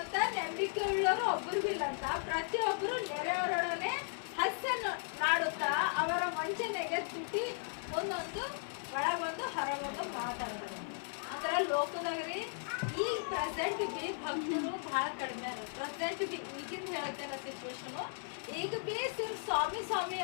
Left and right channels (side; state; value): right; silent; 54 dB below the other